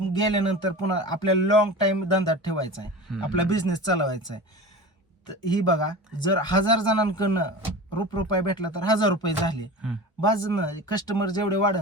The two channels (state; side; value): normal; both; correlation 0.33